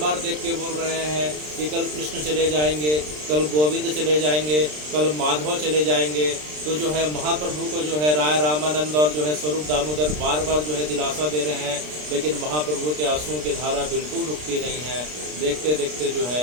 देख के बोल रहे हैं कि कल कृष्ण चले जाएंगे, कल गोविंद चले जाएंगे, कल माधव चले जाएंगे। तो जो है महाप्रभु को जो है राय रामानंद और जो है स्वरूप दामोदर बार बार जो है दिलासा दे रहे हैं, लेकिन महाप्रभु के आंसुओं की धारा बिल्कुल रुकती नहीं है। देखते देखते जो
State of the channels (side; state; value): left; late; 33 ms